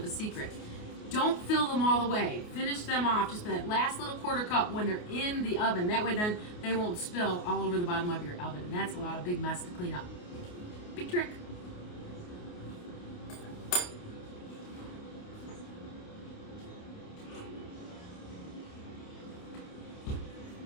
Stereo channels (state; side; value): late; right; 28 ms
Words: a secret. Don't fill them all the way. Finish them off, just that last little quarter cup when they're in the oven. That way then they won't spill all over the bottom of your oven. And that's a lot of big mess to clean up. Big trick.